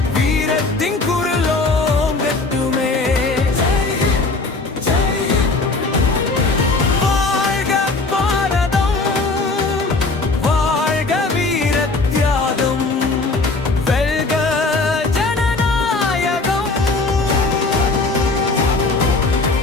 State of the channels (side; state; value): right; quieter; 3.5 dB